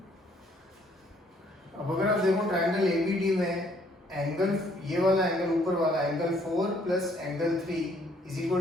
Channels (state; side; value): normal; both; correlation 0.64